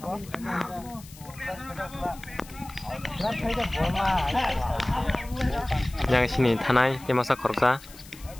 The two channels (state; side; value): noise; left; hiss, 20 dB below the sound